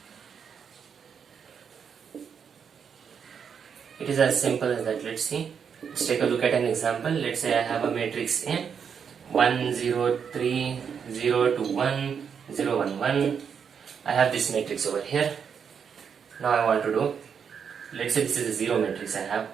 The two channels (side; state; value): left; quieter; 7.0 dB